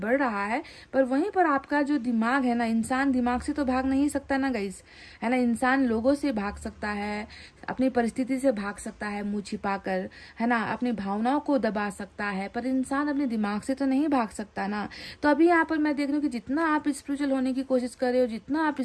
रहा है, पर वहीं पर आपका जो दिमाग है ना, इंसान दिमाग से तो भाग नहीं सकता ना गाइस, है ना। इंसान लोगों से भाग सकता है, अपनी परिस्थिति से भाग सकता है मुंह छिपाकर, है ना, अपनी भावनाओं को दबा सकता है, पर इंसान अपने दिमाग से तो नहीं भाग सकता ना। तो अभी यहाँ पर मैं देख रही हूँ कि जितना आप स्पिरिचुअल होने की कोशिश कर रहे हो, जितना आप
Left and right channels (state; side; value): identical; both; correlation 1.00